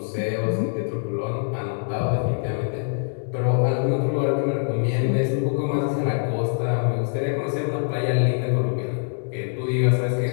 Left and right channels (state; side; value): silent; right; digital silence